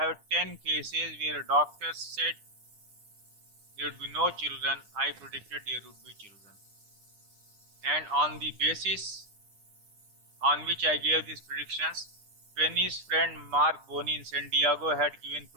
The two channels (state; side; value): late; left; 10 ms